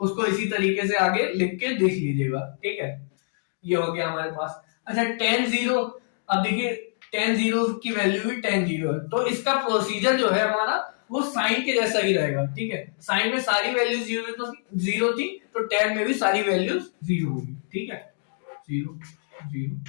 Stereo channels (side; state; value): right; silent; digital silence